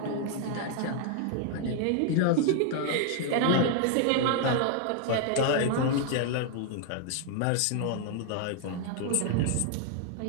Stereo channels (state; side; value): different; both; correlation 0.00